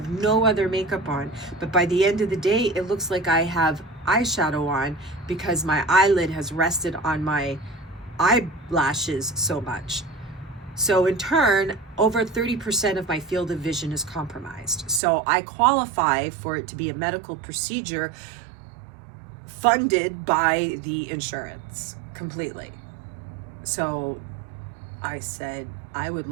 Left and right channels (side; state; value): left; drops out; at 15.0 s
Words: no other makeup on, but by the end of the day, it looks like I have eyeshadow on, because my eyelid has rested on my eyelashes so much. So in turn, over 30% of my field of vision is compromised. So I qualify for it to be a medical procedure funded by the insurance completely. So I said, I would